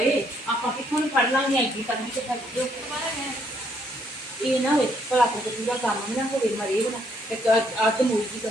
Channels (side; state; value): both; normal; correlation 0.70